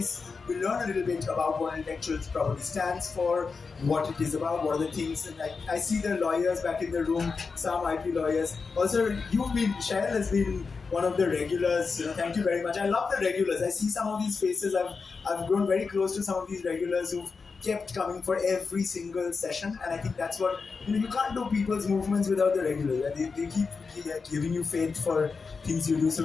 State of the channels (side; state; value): right; quieter; 4.8 dB